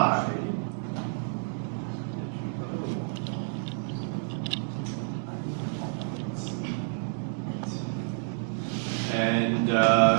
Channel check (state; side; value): silent; left; digital silence